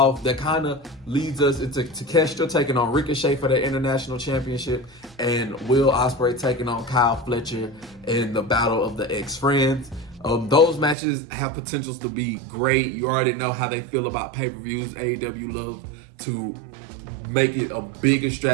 That kind of leads us into Takeshita taking on Ricochet for the International Championship, and Will Ospreay taking on Kyle Fletcher in the Battle of the Ex-Friends. Those matches have potentials to be great. You already know how they feel about pay-per-views. AEW loves to make it a big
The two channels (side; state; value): left; drops out; at 11.0 s